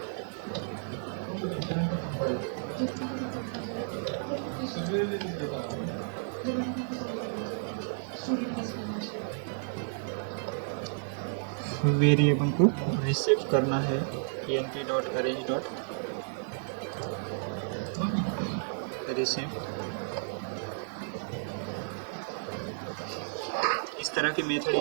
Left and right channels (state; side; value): silent; left; digital silence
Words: वेरिएबल को रिसेव करना है np डॉट अरेंज डॉट रिसेव। इस तरह के मेथड